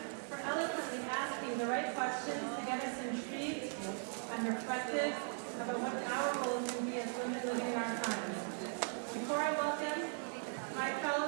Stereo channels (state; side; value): silent; left; 52 dB below the other